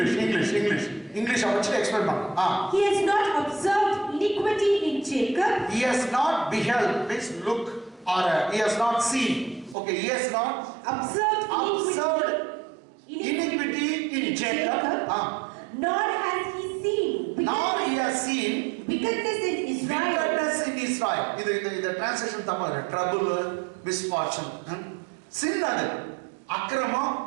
இங்கிலீஷ் இங்கிலீஷ் இங்கிலீஷ் படிச்சு எக்ஸ்பிளைன் பண்ணுங்க. He has not observed iniquity in Jacob. He has not beheld, means look, or he has not seen. Okay, he has not observed iniquity in Jacob. Nor has he seen. Nor he has seen wickedness in Israel. Wickedness in Israel. இது translation தப்பா இருக்கு. Trouble, misfortune. Sin அது அக்கிரமம்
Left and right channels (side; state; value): left; drops out; at 9.8 s